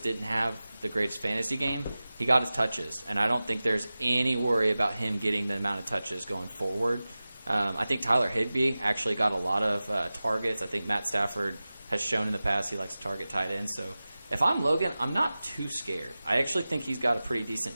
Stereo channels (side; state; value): both; inverted; correlation -0.96